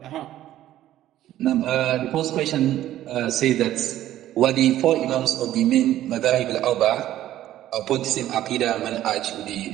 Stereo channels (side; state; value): left; quieter; 13.2 dB